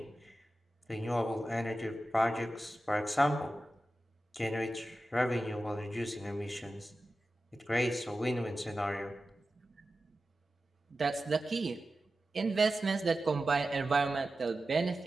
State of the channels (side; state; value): both; normal; correlation 0.93